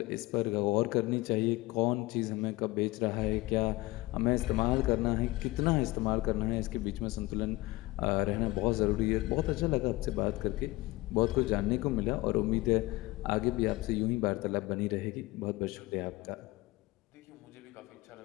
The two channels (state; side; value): quieter; right; 20.5 dB